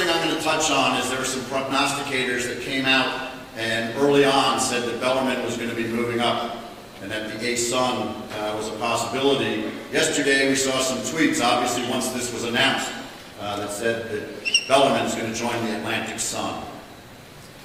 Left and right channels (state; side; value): identical; both; correlation 1.00